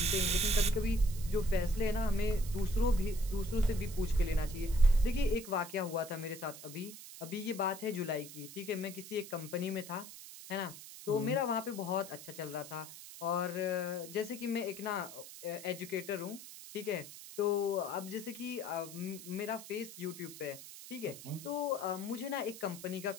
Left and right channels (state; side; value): noise; right; hiss, 14 dB below the sound